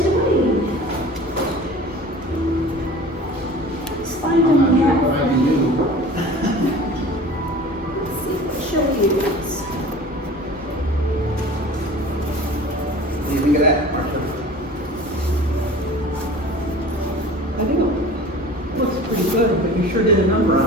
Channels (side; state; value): both; normal; correlation 0.41